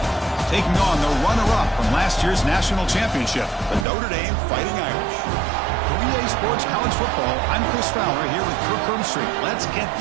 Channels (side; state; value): left; drops out; at 3.9 s